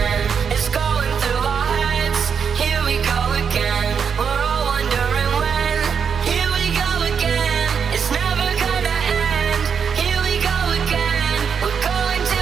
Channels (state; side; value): quieter; left; 6.7 dB